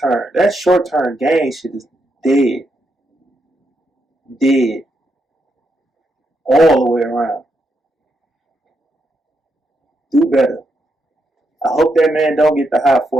That short term gain shit is dead. Dead. All the way around. Do better. I hope that man don't get the high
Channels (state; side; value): normal; both; correlation 0.81